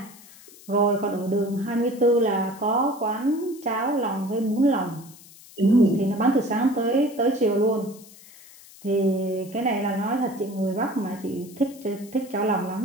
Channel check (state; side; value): noise; left; hiss, 21 dB below the sound